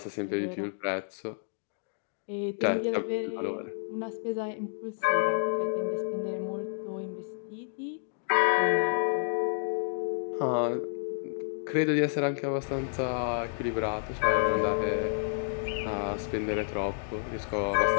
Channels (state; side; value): silent; right; digital silence